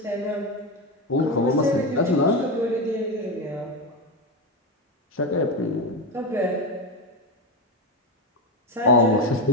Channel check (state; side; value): normal; both; correlation 0.14